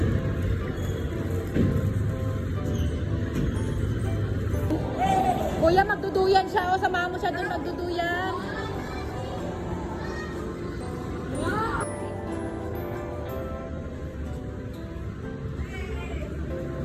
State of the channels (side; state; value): both; identical; correlation 1.00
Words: Kuya, magduduyan siya. O, samahan mo siya dun magduduyan.